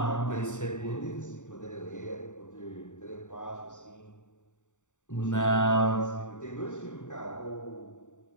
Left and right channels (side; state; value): right; late; 0.85 ms